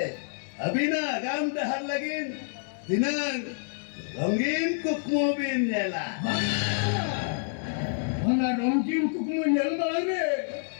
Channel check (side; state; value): right; silent; 59 dB below the other